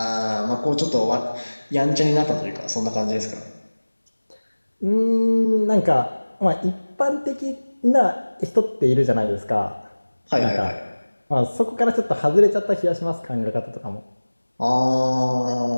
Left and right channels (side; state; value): both; inverted; correlation -1.00